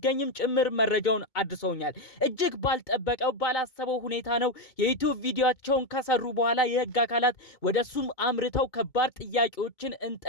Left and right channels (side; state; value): right; late; 2.2 ms